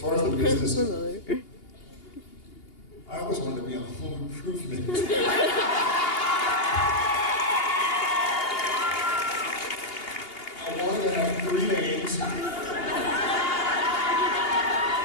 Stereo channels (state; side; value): late; right; 2.8 ms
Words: far as the business, I always wanted to be on Home Improvement. I wanted to have 3 names and